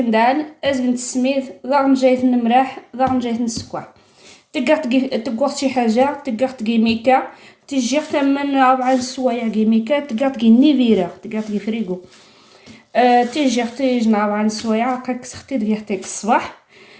ازقند السميد ضغن جايت المراح ضغن جايت السكر تقر شي حاجه تقر تقي ميكا تجي من 4 سوايع ميكا تقر تقي نيفيرا تقر تقي فريغو تيجي نعاود عن سوايع هكاك سختي دقيقتك الصباح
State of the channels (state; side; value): identical; both; correlation 1.00